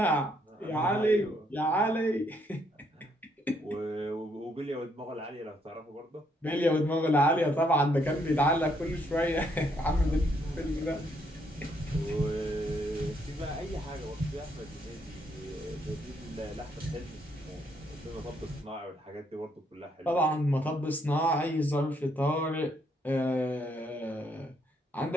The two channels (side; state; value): both; normal; correlation 0.72